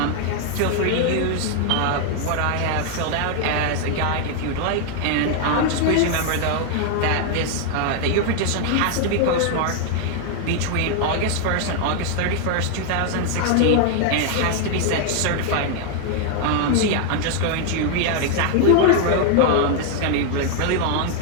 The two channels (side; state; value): both; different; correlation 0.00